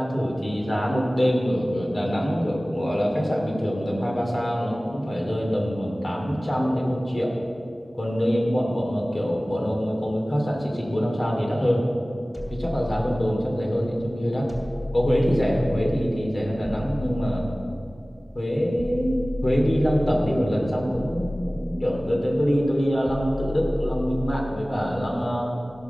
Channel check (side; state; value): both; normal; correlation 0.98